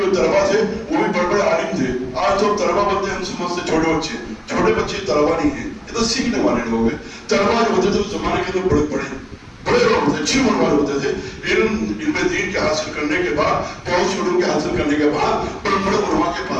جو طلبا تھے وہ بھی بڑے بڑے عالم تھے۔ آج تو طلبا بنتے ہیں ہم سمجھتے چھوٹے بچے، چھوٹے بچے طلبا نہیں ہیں، یہ تو سیکھنے والے لوگ ہیں۔ طلبا جو ہوتے تھے اس زمانے کے اندر بڑے لوگ ہوتے، اچھی عمر والے ہوتے تھے، علم دین کے حاصل کرنے کے بعد، بہت سے علوم کے حاصل کرنے کے بعد بڑے بڑے علماء کے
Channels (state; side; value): identical; both; correlation 1.00